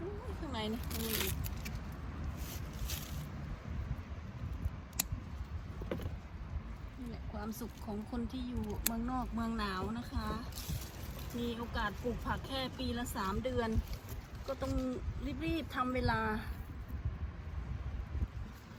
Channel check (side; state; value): both; identical; correlation 1.00